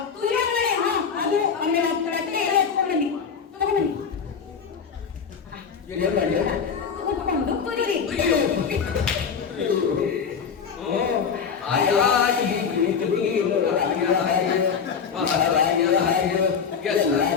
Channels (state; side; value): quieter; right; 6.4 dB